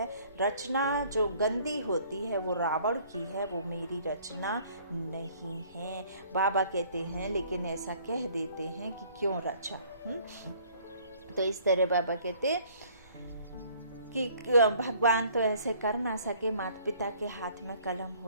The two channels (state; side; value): inverted; both; correlation -0.57